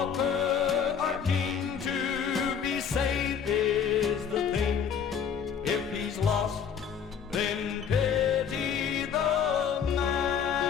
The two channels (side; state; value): right; quieter; 7.4 dB